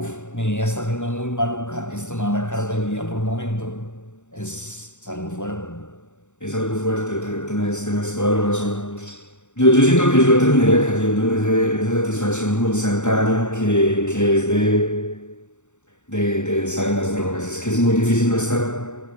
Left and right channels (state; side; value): late; right; 0.84 ms